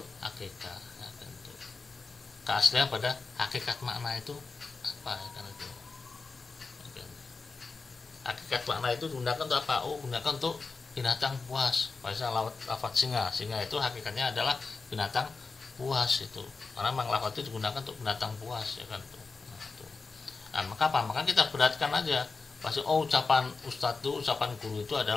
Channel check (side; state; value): right; quieter; 4.3 dB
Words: hakikah, ya, itu. Keaslian pada hakikat makna itu apa, ya, kan itu. Hakikat makna itu digunakan untuk apa? Oh, gunakan untuk binatang buas. Misalnya lafaz singa. Singa itu hakikatnya adalah binatang buas itu. Karena memang lafaz itu digunakan untuk binatang buas, ya kan itu. Nah, itu. Nah, maka apa? Maka kita beratkan aja. Pasti ucapan ustadz itu, ucapan guru itu